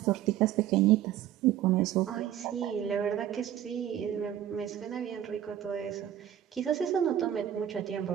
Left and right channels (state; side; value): quieter; left; 11.1 dB